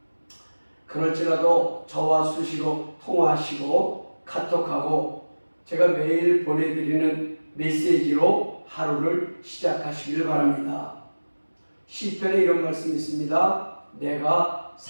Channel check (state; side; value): inverted; both; correlation -1.00